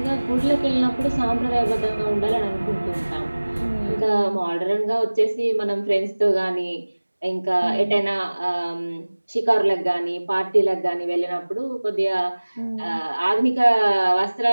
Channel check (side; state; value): both; inverted; correlation -1.00